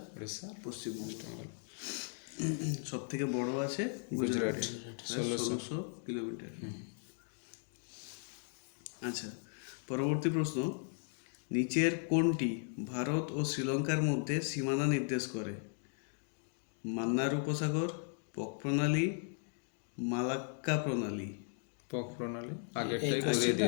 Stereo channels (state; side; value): silent; right; 53 dB below the other